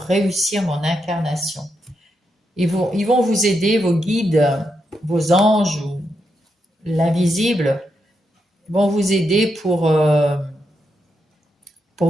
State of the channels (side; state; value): both; normal; correlation 0.83